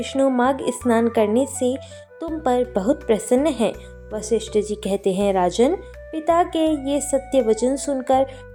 माघ स्नान करने से तुम पर बहुत प्रसन्न है। वशिष्ठ जी कहते हैं, राजन, पिता के ये सत्य वचन सुनकर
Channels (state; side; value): identical; both; correlation 1.00